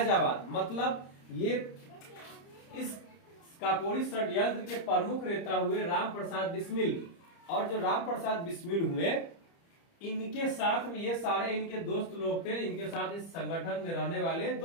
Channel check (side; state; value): right; late; 30 ms